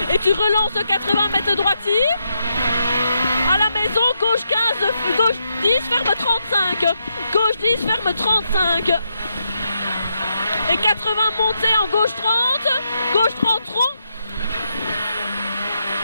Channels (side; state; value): both; inverted; correlation -0.81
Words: Et tu relances 80 mètres droitie. À la maison, gauche 15, gauche 10, ferme 35. Gauche 10, ferme 35. Et 80 montées en gauche 30. Gauche 30 rond.